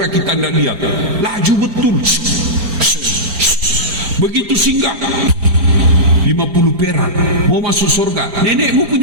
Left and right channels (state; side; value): late; left; 4.4 ms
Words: kita tidak lihat, laju betul. Begitu singgah, 50 perak, mau masuk surga. Nenekmu